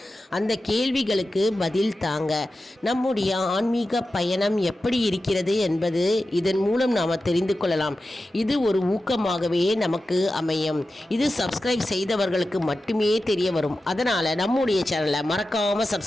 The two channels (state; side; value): normal; both; correlation 0.93